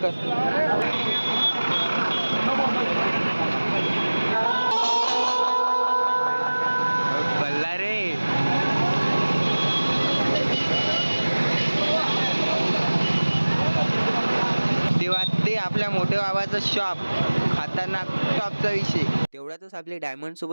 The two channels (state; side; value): inverted; both; correlation -1.00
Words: कर. बल्ला रे ते आपल्या मोठ्या बाबाचं शॉप खतरनाक शॉपचा विषय. तेवढ्यातच आपली डायमंड